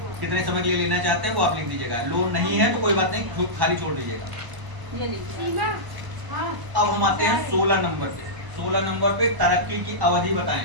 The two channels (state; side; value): late; left; 1.0 ms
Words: कितने समय के लिए लेना चाहते हैं वो आप लिख दीजिएगा। लोन नहीं है तो कोई बात नहीं, खाली छोड़ दीजिएगा। अब हम आते हैं 16 नंबर पे। 16 नंबर पे तरक्की की अवधि